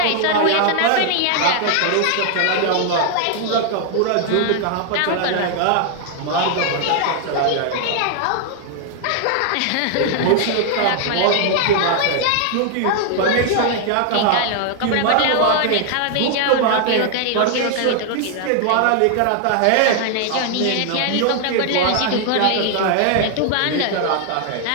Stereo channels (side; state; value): both; different; correlation 0.00